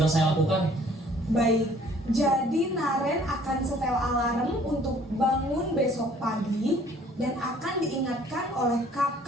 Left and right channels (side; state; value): both; normal; correlation 0.57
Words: saya lakukan. Baik, jadi Naren akan setel alarm untuk bangun besok pagi dan akan diingatkan oleh